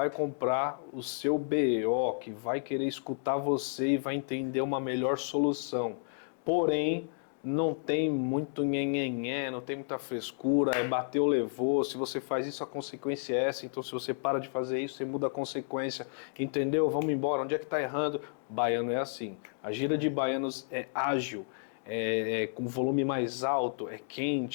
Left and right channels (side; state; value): right; silent; digital silence